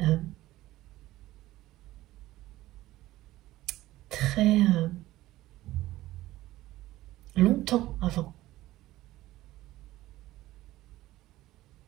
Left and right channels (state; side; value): quieter; left; 16.3 dB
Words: très longtemps avant.